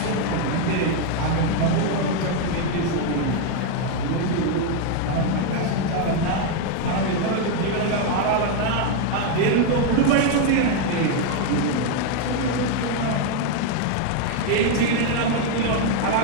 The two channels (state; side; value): different; both; correlation 0.01